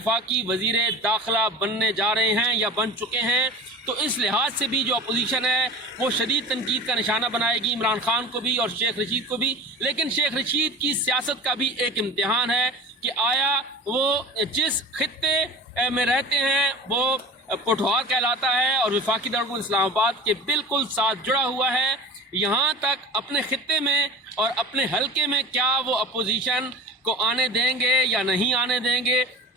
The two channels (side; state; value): both; normal; correlation 0.35